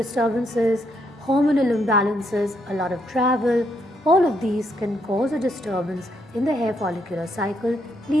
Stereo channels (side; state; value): both; normal; correlation 0.75